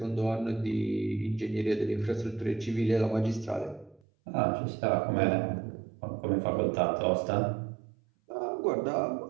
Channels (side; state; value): left; drops out; at 4.0 s